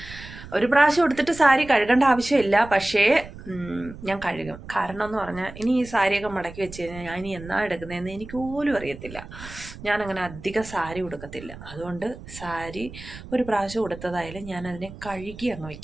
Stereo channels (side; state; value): right; noise; rumble, 15 dB below the sound